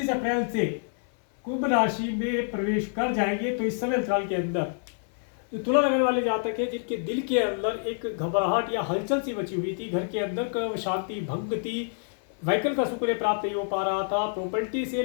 अप्रैल से कुंभ राशि में प्रवेश कर जाएंगे तो इस समय अंतराल के अंदर जो तुला लगन वाले जातक है जिनके दिल के अंदर एक घबराहट या हलचल सी मची हुई थी, घर के अंदर का शांति भंग थी, व्हीकल का सुख प्राप्त नहीं हो पा रहा था, प्रॉपर्टी से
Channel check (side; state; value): right; silent; 60 dB below the other